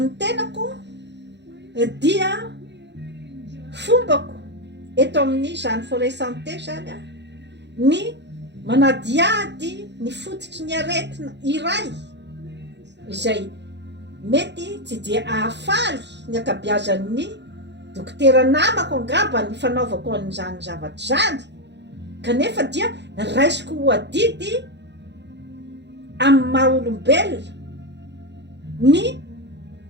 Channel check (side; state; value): left; late; 0.51 ms